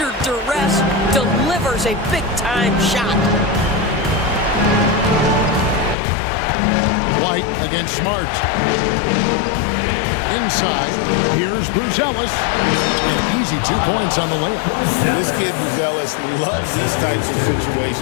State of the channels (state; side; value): drops out; right; at 6.0 s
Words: duress delivers a big-time shot. White against Smart. Inside, here's Buzelis. An easy 2 points on the layup. This kid, Buzelis, loves these types of